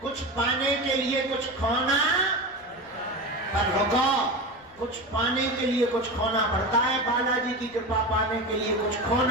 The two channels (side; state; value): left; noise; rumble, 29 dB below the sound